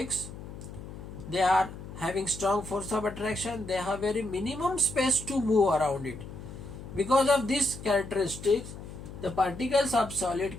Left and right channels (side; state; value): left; noise; hum, 12 dB below the sound